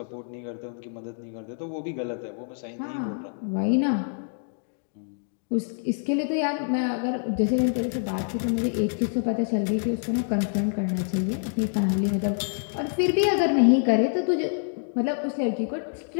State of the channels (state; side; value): silent; right; digital silence